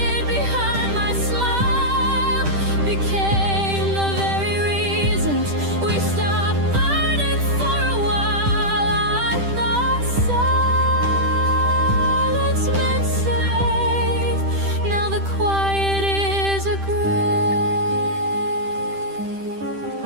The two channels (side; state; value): left; late; 10 ms